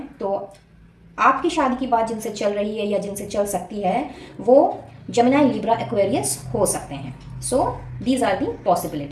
तो आपकी शादी की बात जिनसे चल रही है या जिनसे चल सकती है वो जेमिनी, लिब्रा, एक्वेरियस हो सकते हैं। So these are the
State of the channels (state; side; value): identical; both; correlation 1.00